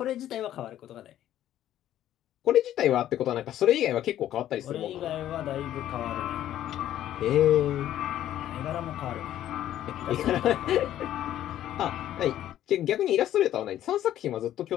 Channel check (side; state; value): right; quieter; 12.2 dB